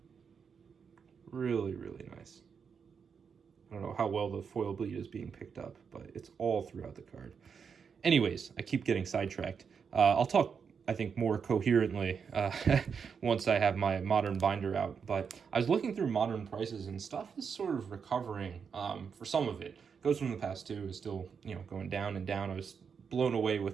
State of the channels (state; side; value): quieter; left; 6.4 dB